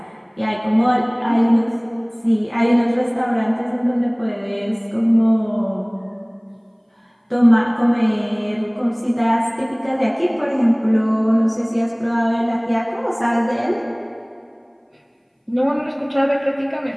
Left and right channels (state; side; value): identical; both; correlation 1.00